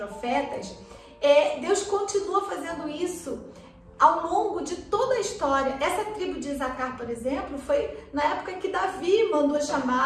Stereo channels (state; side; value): identical; both; correlation 1.00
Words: Deus continua fazendo isso ao longo de toda a história. Essa tribo de Isacar, por exemplo, foi na época que Davi mandou